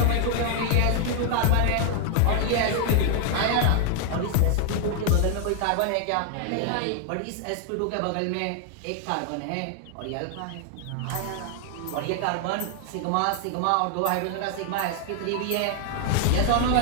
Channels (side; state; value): both; different; correlation 0.00